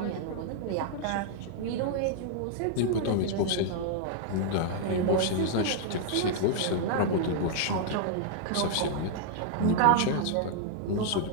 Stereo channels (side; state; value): both; different; correlation 0.00